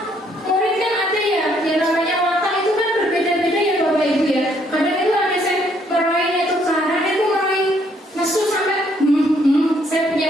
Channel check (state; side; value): normal; both; correlation 0.68